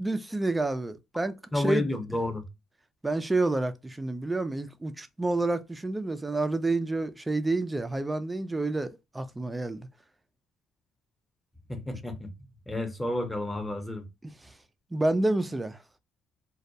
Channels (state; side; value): normal; both; correlation 0.93